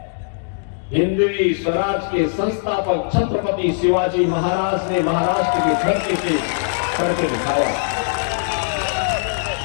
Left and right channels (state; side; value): silent; right; digital silence